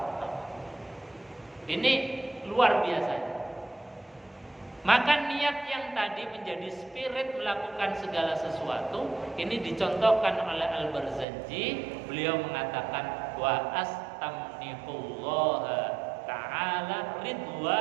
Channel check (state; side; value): drops out; left; at 11.2 s